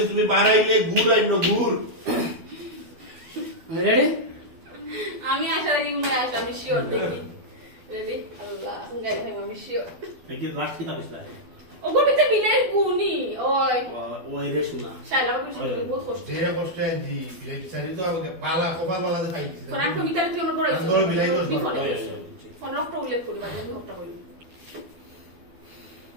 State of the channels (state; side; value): late; left; 12 ms